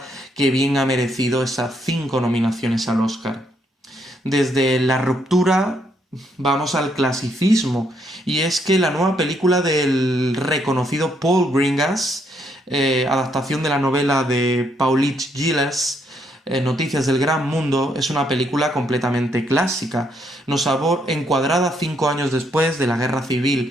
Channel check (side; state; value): both; normal; correlation 0.73